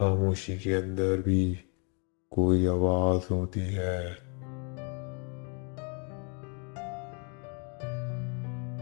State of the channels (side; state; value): right; quieter; 36.4 dB